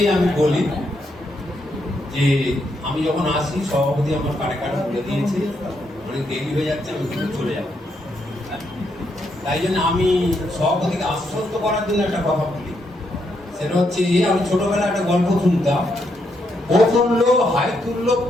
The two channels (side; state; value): both; normal; correlation 0.78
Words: আমি বলি যে আমি যখন আসি সভাপতি আমার কানে কানে বলে দিয়েছে অনেক দেরি হয়ে যাচ্ছে, আমি কিন্তু চলে যাব। তাই জন্য আমি সভাপতিকে আশ্বস্ত করার জন্য একটা কথা বলি, সেটা হচ্ছে আমি ছোটবেলায় একটা গল্প শুনতাম, ও তুললো হাই তুললো